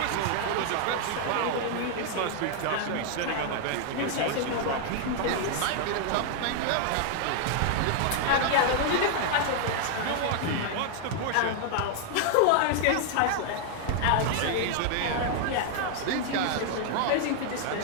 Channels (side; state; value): both; different; correlation 0.00